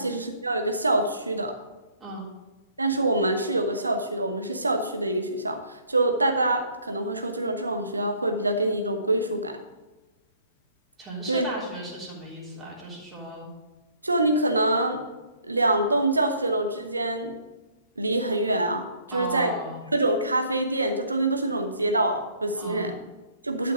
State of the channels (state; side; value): inverted; both; correlation -0.62